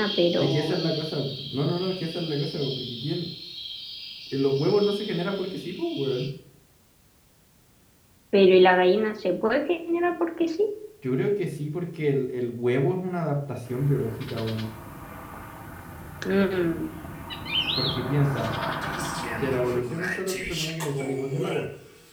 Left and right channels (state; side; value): identical; both; correlation 1.00